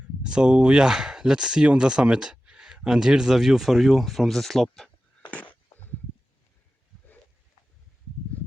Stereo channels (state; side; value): normal; both; correlation 0.94